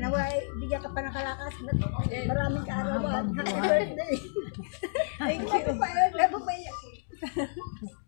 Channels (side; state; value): right; silent; digital silence